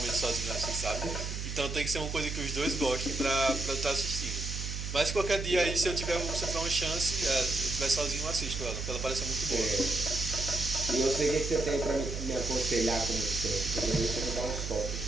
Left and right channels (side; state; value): right; noise; hum, 5 dB below the sound